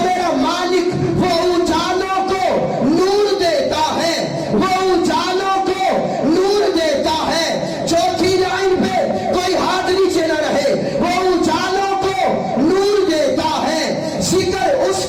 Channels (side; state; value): both; identical; correlation 1.00